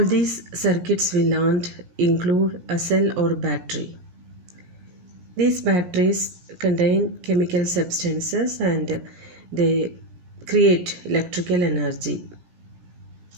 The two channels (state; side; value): late; left; 17 ms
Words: these circuits we learned include a cell or battery. These batteries contain chemical substances and they create electrical energy.